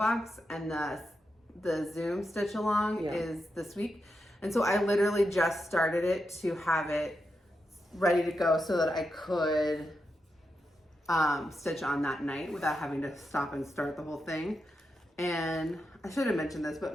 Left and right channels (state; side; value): normal; both; correlation 0.86